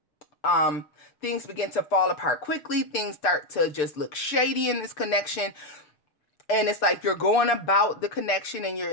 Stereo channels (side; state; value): right; late; 6.7 ms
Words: things begin to fall apart quickly. Things start to just look shady in this connection. And it's like you're going about the connection and you're